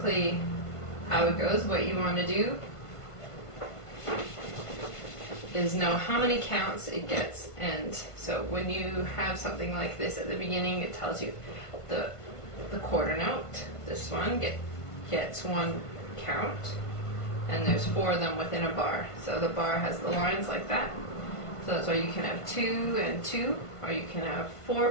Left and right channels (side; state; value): right; late; 1.5 ms